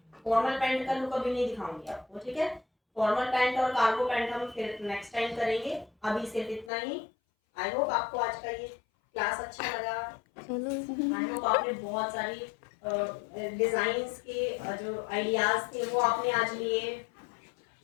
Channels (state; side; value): drops out; right; at 6.7 s